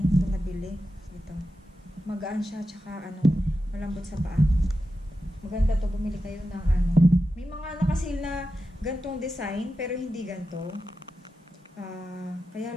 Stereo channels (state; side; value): normal; both; correlation 0.91